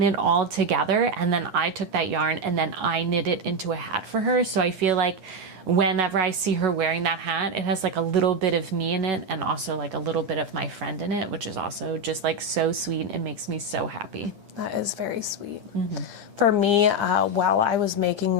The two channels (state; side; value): late; left; 9.9 ms